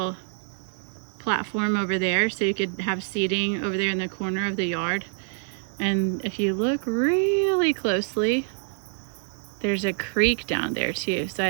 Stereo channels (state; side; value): silent; left; 61 dB below the other